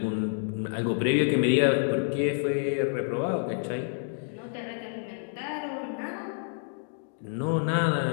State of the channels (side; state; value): right; silent; digital silence